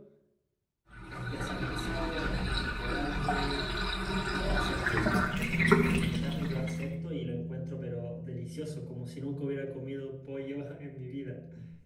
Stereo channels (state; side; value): identical; both; correlation 1.00